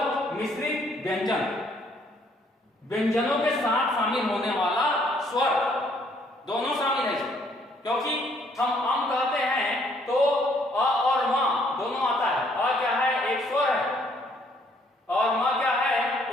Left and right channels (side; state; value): both; normal; correlation 0.66